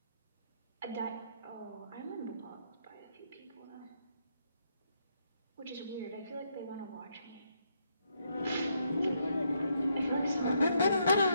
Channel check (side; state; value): both; inverted; correlation -0.76